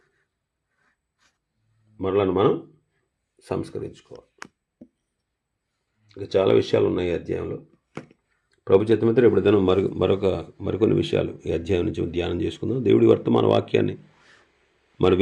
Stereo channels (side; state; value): both; identical; correlation 1.00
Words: ఇంకా చాలా విషయాలు ఉన్నాయి ఈ అధ్యాయంలో. ప్రభు చిత్తమైతే ఇప్పుడు దినం మరికొన్ని విషయాలు ఈ అధ్యాయం నుంచి ధ్యానం చేసుకుందాం. దేవుడి వర్తమాన వాక్యాన్ని మన